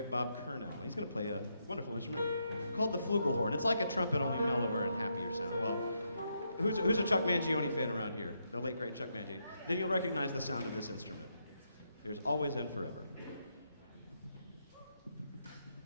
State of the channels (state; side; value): inverted; both; correlation -0.80